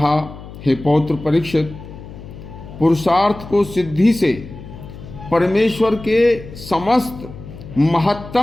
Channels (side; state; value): left; noise; hum, 15 dB below the sound